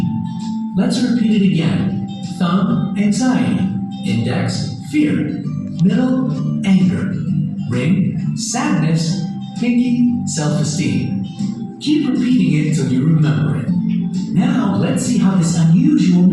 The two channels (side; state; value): both; identical; correlation 1.00